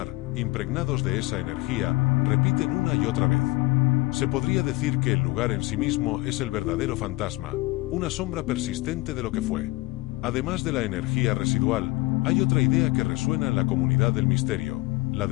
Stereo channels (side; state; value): right; quieter; 21.7 dB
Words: impregnados de esa energía, repiten una y otra vez. Se podría decir que el lugar en sí mismo es el verdadero fantasma, una sombra persistente de lo que fue. Además de la energía residual, hay otra idea que resuena en la comunidad del misterio, la